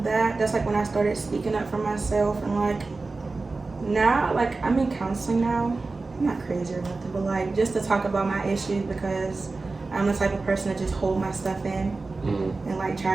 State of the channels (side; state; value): left; quieter; 3.7 dB